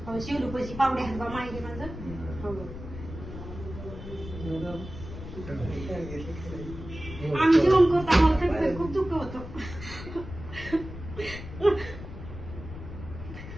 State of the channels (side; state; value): left; noise; rumble, 11 dB below the sound